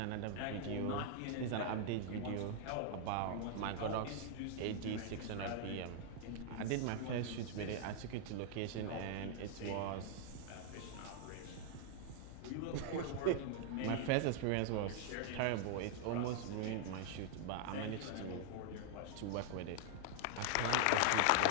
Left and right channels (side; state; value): both; different; correlation 0.00